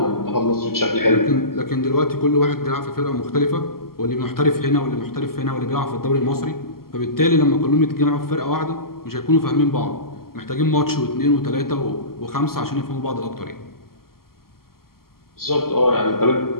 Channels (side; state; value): right; late; 0.93 ms